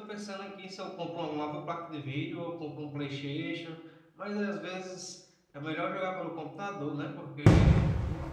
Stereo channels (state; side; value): identical; both; correlation 1.00